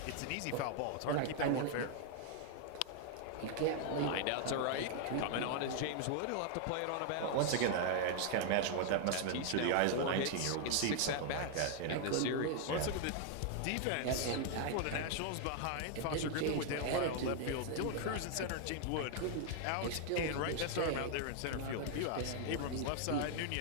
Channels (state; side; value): different; both; correlation 0.00